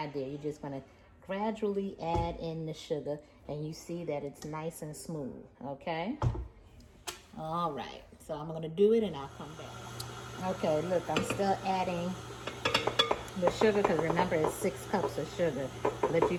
You're just gonna gradually add in the sugar, and you see that it's nice and smooth, okay? All right, so I'm gonna do it and I'll come back. Okay, look, I'm still adding the sugar because remember it's 6 cups of sugar, but you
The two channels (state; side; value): identical; both; correlation 1.00